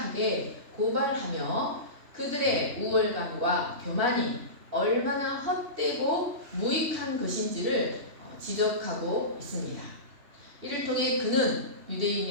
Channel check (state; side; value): late; left; 3.0 ms